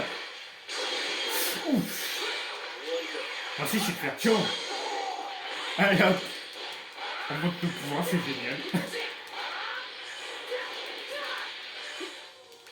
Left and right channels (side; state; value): both; identical; correlation 1.00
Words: Ouf. Moi aussi, je vais le faire chiant. Allez hop. On monte nos pouvoirs, c'est génial.